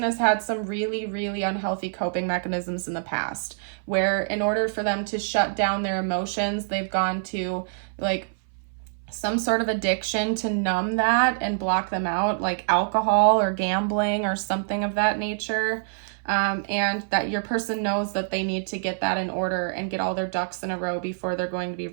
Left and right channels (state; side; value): silent; left; 59 dB below the other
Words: has had some really, really unhealthy coping mechanisms in the past, where in order for them to shut down their emotions, they've gone to like some sort of addiction to numb that and block them out, like alcohol or gambling or something of that nature. and that your person knows that they need to get that in order and get all their ducks in a row before they're going to be